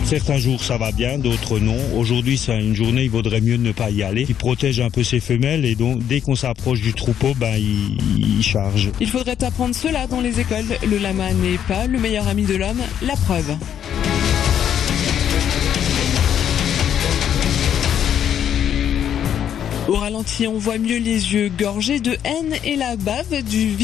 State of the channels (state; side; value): quieter; right; 9.4 dB